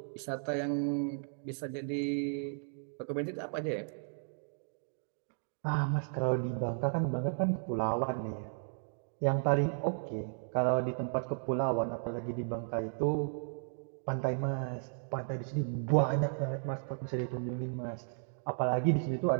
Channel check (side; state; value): left; silent; digital silence